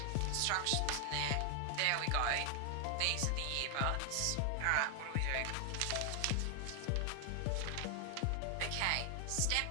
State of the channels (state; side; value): different; both; correlation 0.00